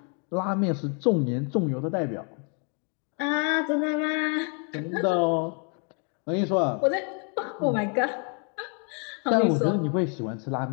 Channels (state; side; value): quieter; right; 39.3 dB